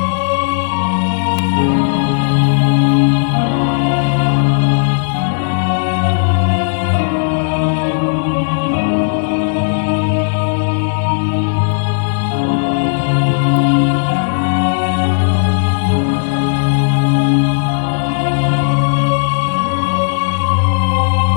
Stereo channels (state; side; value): silent; right; digital silence